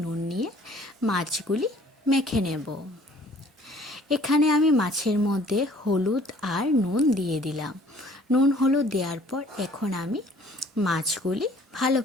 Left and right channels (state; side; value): normal; both; correlation 0.55